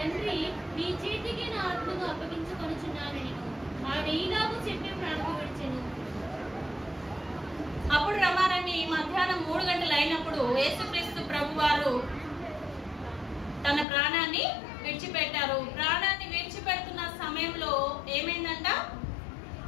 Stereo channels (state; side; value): drops out; right; at 13.9 s